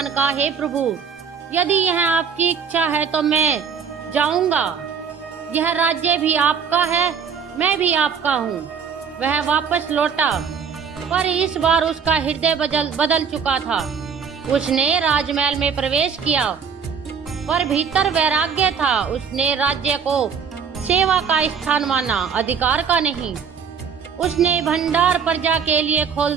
कहा, हे प्रभु, यदि यह आपकी इच्छा है तो मैं जाऊंगा। यह राज्य भी आपका है, मैं भी आपका हूँ। वह वापस लौटा, पर इस बार उसका हृदय बदल चुका था। उसने राजमहल में प्रवेश किया, पर भीतर वैराग्य था। उसने राज्य को सेवा का स्थान माना, अधिकार का नहीं। उसने भंडार प्रजा के लिए खोल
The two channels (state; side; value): quieter; left; 6.6 dB